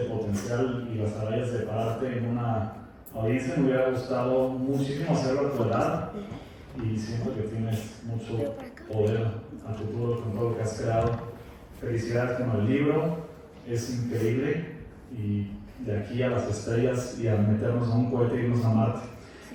potencial y las agallas de pararte en una audiencia. Me hubiera gustado muchísimo hacerlo a tu edad y siento que tienes mucho poder a futuro con todo lo que has creado. Felicidades con el libro, es increíble, y de aquí a las estrellas y a meternos a un cohete y irnos a Marte.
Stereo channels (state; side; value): identical; both; correlation 1.00